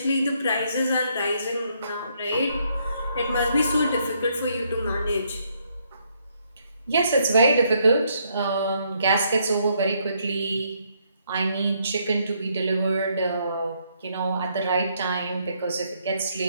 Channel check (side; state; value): both; inverted; correlation -0.72